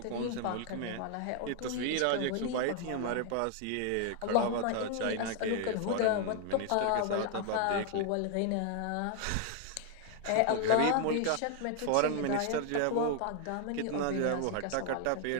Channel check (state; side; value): different; both; correlation 0.00